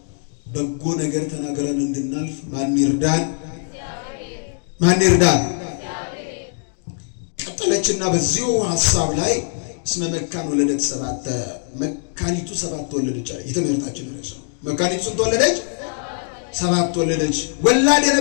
በጎ ነገር ተናገረን እንድናልፍ ማን ይርዳን? ማን ይርዳን? ቀጠለችና በዚሁ ሐሳብ ላይ እስመ መካን ወለደት ሰባተ፣ መካኒቱ 7 ወለደች አለ። የትምህርታችን ርዕስ ነው። መካኒቱ ስንት ወለደች? 7 ወለደች። ወላድ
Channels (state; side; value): silent; right; 65 dB below the other